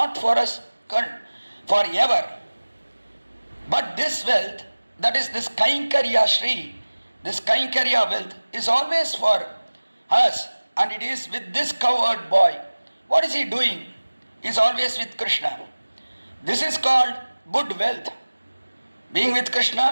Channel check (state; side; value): inverted; both; correlation -1.00